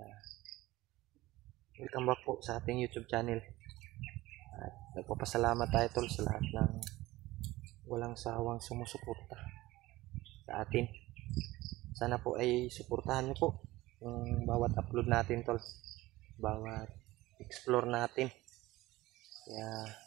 Welcome back po sa ating YouTube channel. At nagpapasalamat tayo tol sa lahat ng walang sawang sumusuporta sa atin. Sana po ay suportahan niyo po yung bawat upload natin tol, bawat explore natin. Kaya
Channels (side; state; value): left; quieter; 18.2 dB